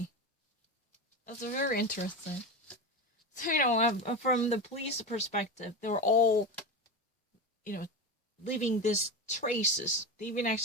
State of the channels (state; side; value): normal; both; correlation 0.21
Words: That's very interesting. So, from the police perspective, they were all, leaving these traces. They've been